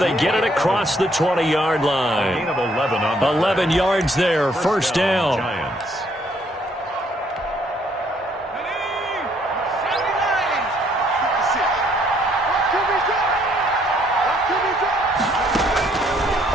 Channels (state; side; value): normal; both; correlation 0.67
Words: get it across the 20-yard line. 11 yards there, first down. Giants.